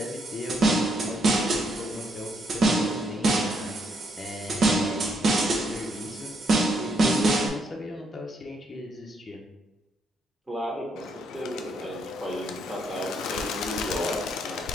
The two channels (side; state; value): both; normal; correlation 0.74